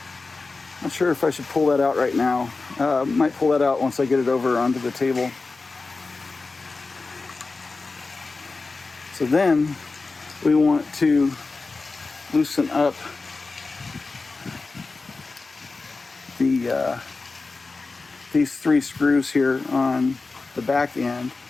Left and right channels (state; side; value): quieter; right; 3.8 dB